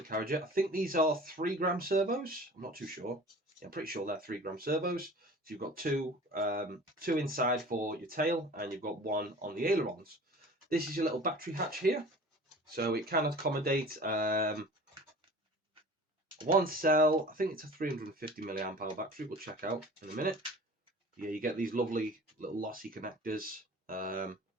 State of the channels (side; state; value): both; normal; correlation 0.42